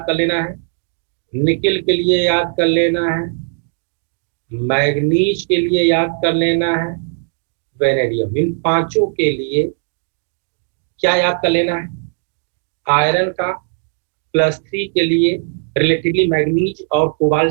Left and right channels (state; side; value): silent; left; digital silence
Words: कर लेना है, निकिल के लिए याद कर लेना है, मैग्नीज के लिए याद कर लेना है, वेनेडियम। इन 5 के लिए क्या याद कर लेना है? आयरन का +3 के लिए रिलेटिवली मैग्नीज और